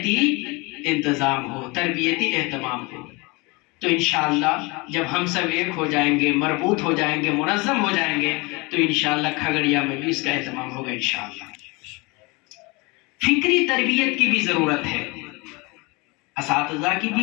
انتظام ہو، تربیتی اہتمام ہو. تو انشاءاللہ جب ہم سب ایک ہو جائیں گے، مربوط ہو جائیں گے، منظم ہو جائیں گے، تو انشاءاللہ کھگڑیا میں بھی اس کا اہتمام ہوگا انشاءاللہ. فکری تربیت کی بھی ضرورت ہے، اساتذہ کی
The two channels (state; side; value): quieter; right; 26.3 dB